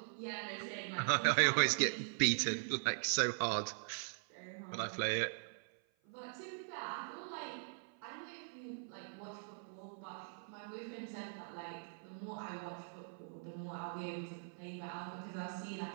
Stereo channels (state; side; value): silent; left; 50 dB below the other